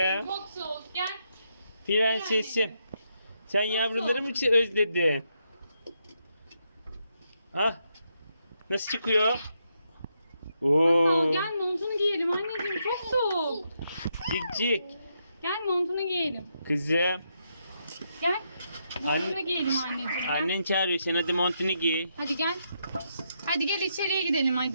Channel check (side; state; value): both; inverted; correlation -0.80